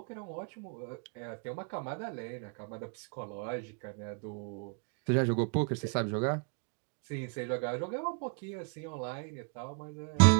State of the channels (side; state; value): left; quieter; 34.3 dB